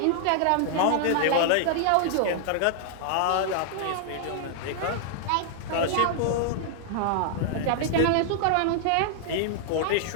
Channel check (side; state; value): both; different; correlation -0.01